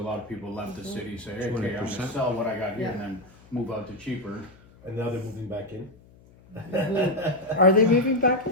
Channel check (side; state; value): left; noise; hum, 26 dB below the sound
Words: of people left the city, say, hey, okay, I'm 20%. gonna sell what I got here and then move out to cheaper. And now they're moving back in. Are they moving back?